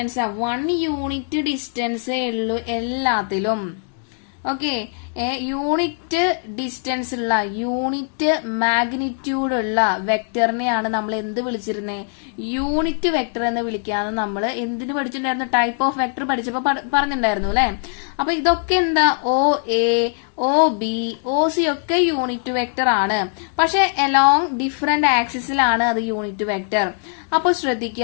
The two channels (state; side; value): silent; right; 57 dB below the other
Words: 1 യൂണിറ്റ് ഡിസ്റ്റൻസേ ഉള്ളൂ എല്ലാത്തിലും. ഓക്കെ, യൂണിറ്റ് ഡിസ്റ്റൻസ് ഉള്ള, യൂണിറ്റ് മാഗ്നിറ്റ്യൂഡ് ഉള്ള വെക്ടറിനെയാണ് നമ്മൾ എന്ത് വിളിച്ചിരുന്നേ, യൂണിറ്റ് വെക്ടർ എന്ന് വിളിക്കാന്ന് നമ്മൾ എന്തിനു പഠിച്ചിട്ടുണ്ടായിരുന്നു, ടൈപ്പ് ഓഫ് വെക്ടർ പഠിച്ചപ്പോ പറഞ്ഞിട്ടുണ്ടായിരുന്നു അല്ലെ. അപ്പൊ ഇതൊക്കെ എന്താ, O A O B O C ഒക്കെ യൂണിറ്റ് വെക്ടർ ആണ്, പക്ഷെ അലോങ് ഡിഫറെന്റ് ആക്സിസിലാണ് അത് യൂണിറ്റ് വെക്ടർ. അപ്പൊ